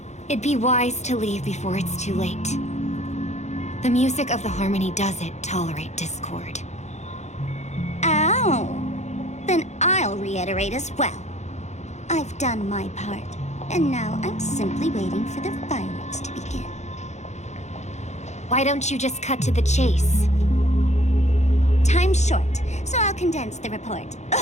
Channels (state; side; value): late; right; 0.33 ms